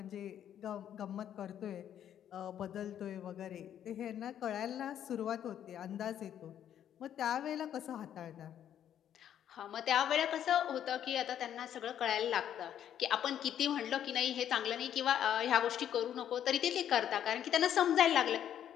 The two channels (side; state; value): right; quieter; 10.1 dB